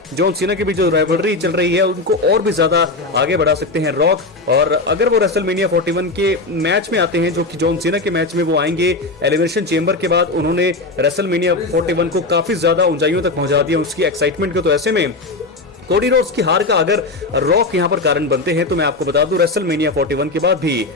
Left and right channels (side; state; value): right; quieter; 3.2 dB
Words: जॉन सीना के बीच जो राइवलरी चल रही है उनको और भी ज्यादा आगे बढ़ा सकते हैं रॉक। और अगर वो रेसलमेनिया 41 के मैच में आते हैं, जो कि जॉन सीना के मैच में वो आएंगे एलिमिनेशन चेंबर के बाद, उन्होंने रेसलमेनिया 41 को काफी ज्यादा ऊंचाइयों तक पहुंचा दिया उसकी एक्साइटमेंट को। तो ऐसे में कोडी रोड्स की हार का अगर रॉक यहां पर कारण बनते हैं तो मैं आपको बता दूं रेसलमेनिया 41 के बाद भी